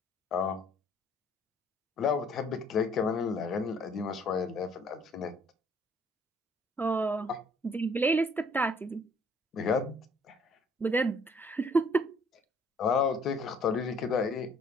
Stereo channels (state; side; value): normal; both; correlation 0.60